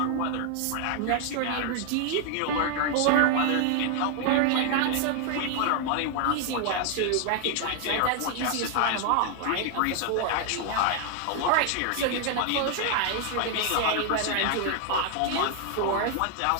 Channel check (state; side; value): different; both; correlation 0.00